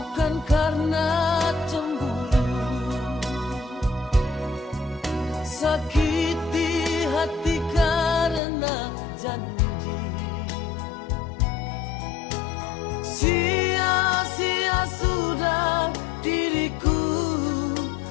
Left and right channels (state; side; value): drops out; right; at 8.4 s